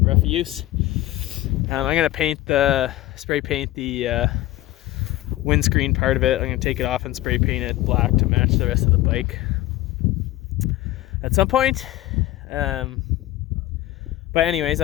rough use. I'm going to spray paint the windscreen part of it. I'm going to take it off and spray paint it black to match the rest of the bike at some point. But anyways,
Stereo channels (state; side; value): quieter; right; 16.1 dB